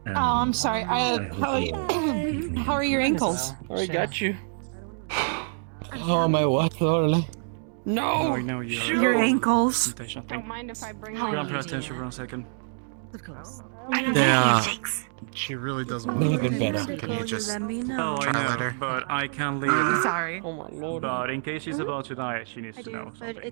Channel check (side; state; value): left; silent; digital silence